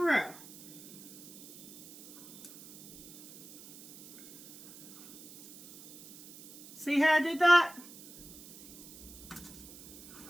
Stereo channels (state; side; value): noise; right; hiss, 17 dB below the sound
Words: See how I did that?